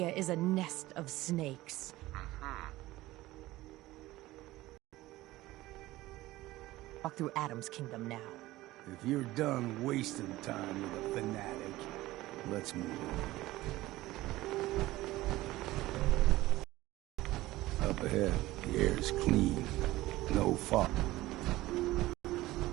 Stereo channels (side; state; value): left; quieter; 17.5 dB